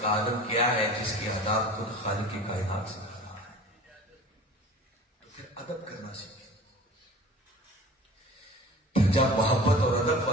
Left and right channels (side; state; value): both; normal; correlation 0.41